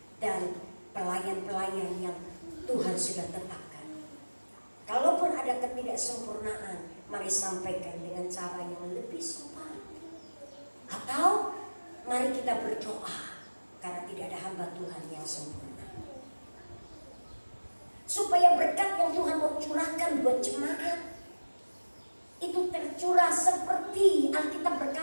dan pelayan-pelayan yang Tuhan sudah tetapkan. Kalaupun ada ketidaksempurnaan, mari sampaikan dengan cara yang lebih sopan. Atau mari kita berdoa, karena tidak ada hamba Tuhan yang sempurna. Supaya berkat yang Tuhan mau curahkan buat jemaat itu tercurah seperti Alkitab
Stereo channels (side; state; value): both; inverted; correlation -1.00